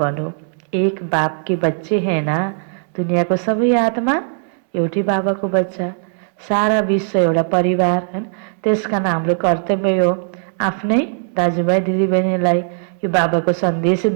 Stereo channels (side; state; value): left; silent; digital silence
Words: एक बाप के बच्चे हैं ना, दुनियाँको सबै आत्मा एउटै बाबाको बच्चा, सारा विश्व एउटा परिवार हैन। त्यसकारण हाम्रो कर्तव्य हो आफ्नै दाजुभाइ दिदीबहिनीलाई यो बाबाको सन्देश